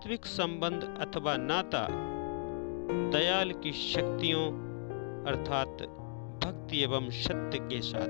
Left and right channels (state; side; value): silent; right; digital silence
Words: संबंध अथवा नाता दयाल की शक्तियों अर्थात भक्ति एवं सत्य के